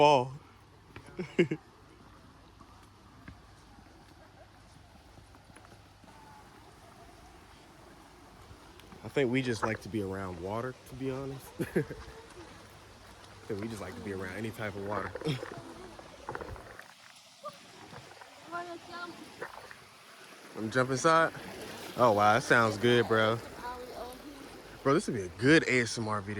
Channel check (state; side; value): identical; both; correlation 1.00